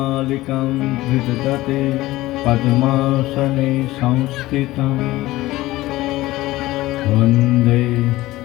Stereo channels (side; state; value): right; quieter; 17.7 dB